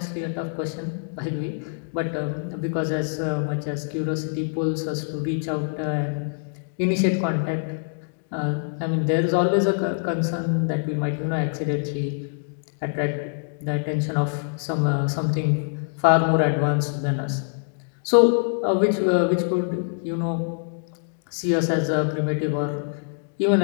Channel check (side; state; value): right; silent; digital silence